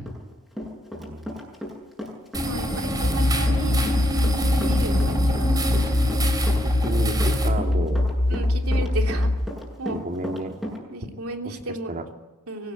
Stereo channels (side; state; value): both; normal; correlation 0.80